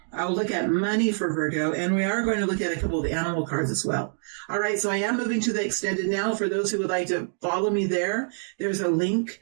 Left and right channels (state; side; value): silent; left; digital silence